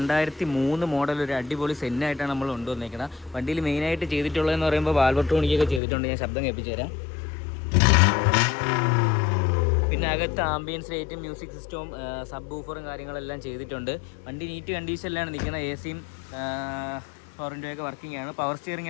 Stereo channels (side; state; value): right; drops out; at 5.8 s